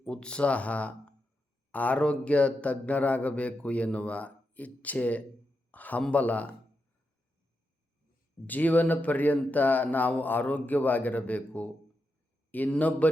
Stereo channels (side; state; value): both; normal; correlation 0.86